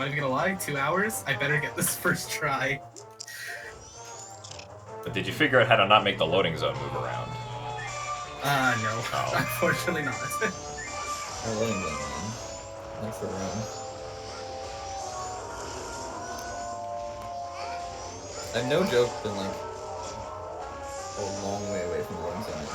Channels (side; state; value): both; identical; correlation 1.00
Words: even gonna lie, 2 hours. I better get this first try. But did you figure out how to not make the loading zone move around? No. Oh. Unfortunately not. I'm letting them in. Thanks for the room. I've no joke been like a long way away from the loading zone and